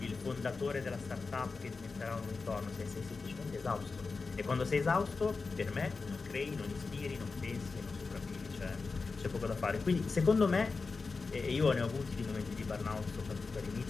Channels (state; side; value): quieter; right; 4.3 dB